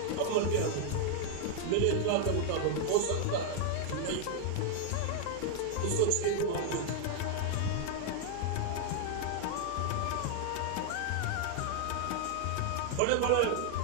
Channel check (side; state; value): both; different; correlation 0.00